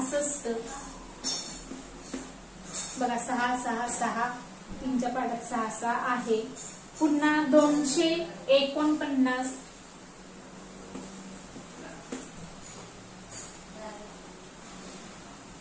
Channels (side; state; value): both; identical; correlation 1.00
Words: बघा 6 6 6 3च्या पाड्यात 6 6 आहे. पुन्हा 249.